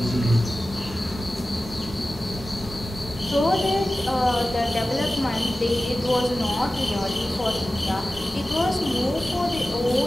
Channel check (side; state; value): both; normal; correlation 0.95